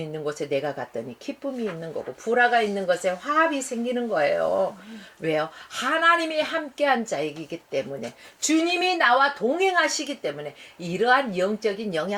있는 곳에 내가 갔더니 기쁨이 있는 거고 불화가 있는 곳에 화합이 생기는 거예요. 왜요? 하나님이 함께한 자이기 때문에 주님이 나와 동행하시기 때문에 이러한 영적인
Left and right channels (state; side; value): identical; both; correlation 1.00